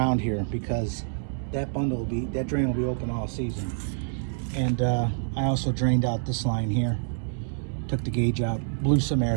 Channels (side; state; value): left; silent; 60 dB below the other